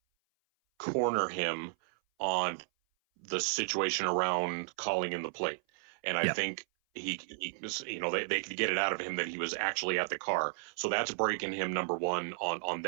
corner him on the situation around calling in the plate, and I think he they could get it out of him that he was actually at the car. So that's breaking him, number one, on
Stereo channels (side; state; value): left; silent; 55 dB below the other